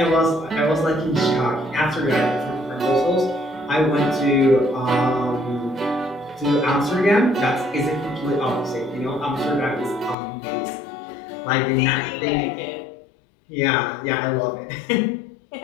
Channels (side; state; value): right; drops out; at 10.2 s